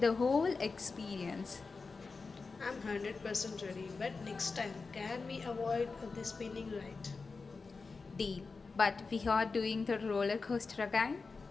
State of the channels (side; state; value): right; quieter; 4.3 dB